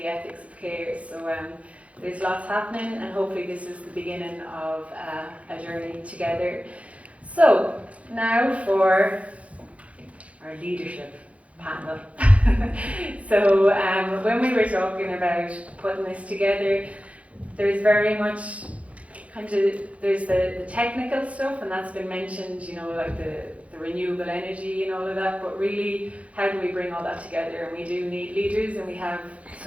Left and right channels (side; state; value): left; late; 0.064 ms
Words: ethics of care. So there's lots happening, and hopefully this is the beginning of a journey together. So now for our leadership panel. So when we were talking about putting this together, there's very much there's the technical stuff, and that's been mentioned, like the renewable energy and all of that, but really, how do we bring all that together? And we do need leaders, and we have